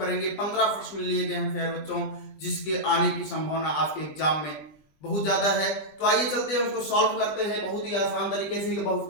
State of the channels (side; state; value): right; late; 20 ms